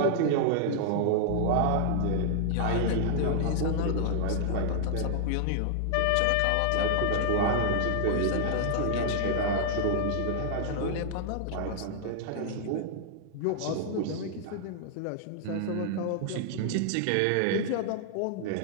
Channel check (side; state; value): both; different; correlation 0.00